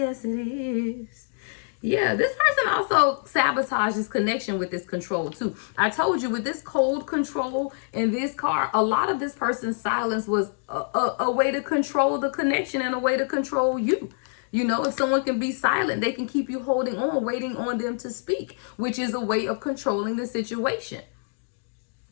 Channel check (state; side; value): silent; right; digital silence